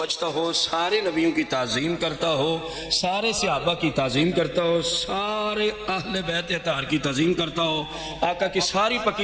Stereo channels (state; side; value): identical; both; correlation 1.00